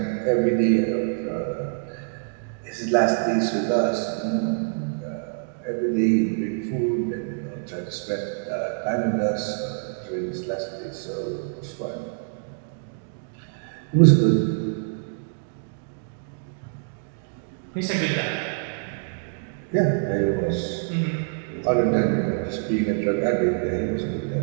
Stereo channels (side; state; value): left; silent; digital silence